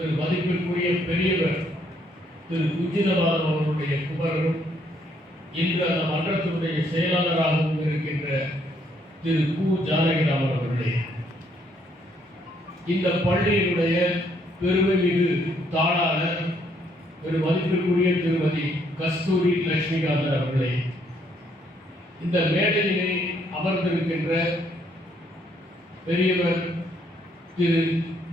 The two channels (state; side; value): normal; both; correlation 0.69